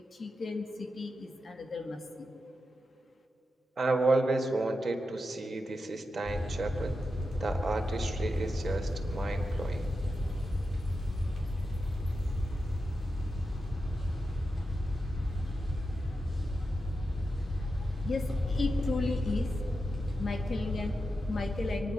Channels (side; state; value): both; normal; correlation 0.89